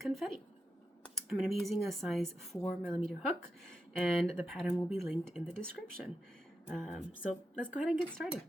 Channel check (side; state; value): both; normal; correlation 0.88